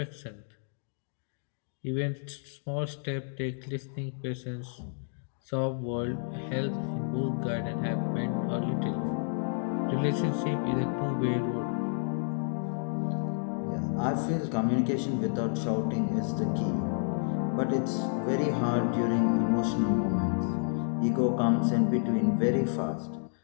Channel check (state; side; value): silent; right; digital silence